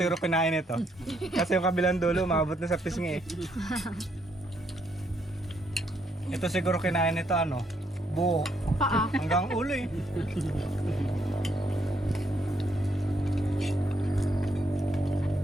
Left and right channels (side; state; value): both; normal; correlation 0.73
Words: kinain ito. Kasi yung kabilang dulo, maabot na sa pisngi eh. Ito siguro kinain nito ano, buo. Paa. Hanggang ulo eh.